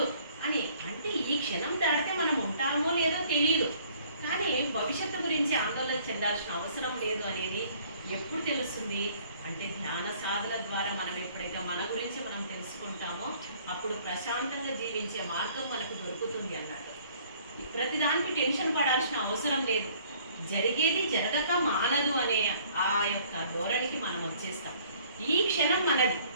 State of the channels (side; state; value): both; inverted; correlation -0.58